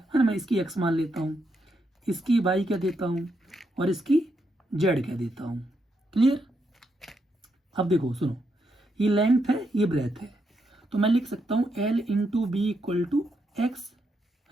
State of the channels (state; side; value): normal; both; correlation 0.80